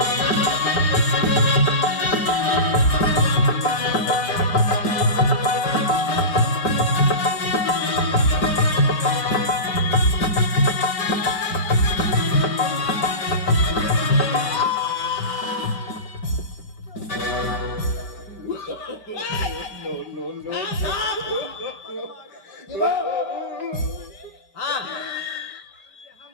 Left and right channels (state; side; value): late; right; 5.1 ms